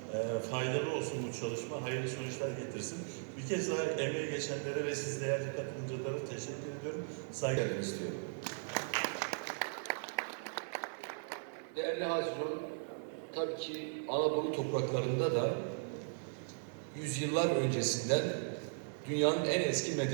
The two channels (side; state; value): left; silent; digital silence